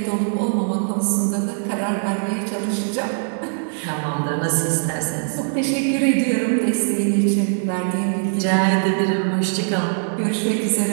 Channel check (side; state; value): left; silent; digital silence